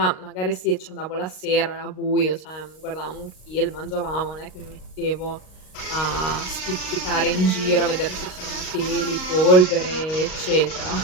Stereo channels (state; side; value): late; right; 38 ms